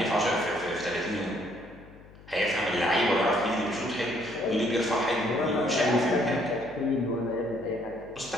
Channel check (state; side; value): noise; left; hum, 21 dB below the sound